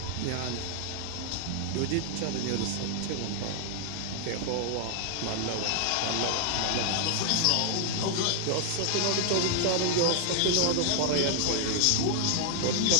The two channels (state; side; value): different; both; correlation 0.00